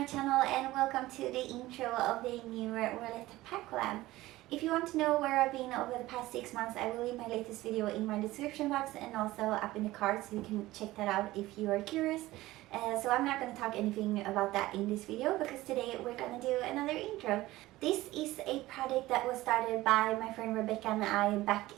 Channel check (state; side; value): quieter; left; 17.5 dB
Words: channel and welcome to the intro of the new Roulette Pan Collab. If you want to know where I've been over the past 6 months, I will leave my latest video in my description box and also up in the card, so you can check that out if you are curious. So I'm not going to talk anything about that in this video because today we're going to do another intro. This is a project that was started by my friend Rebecca and I back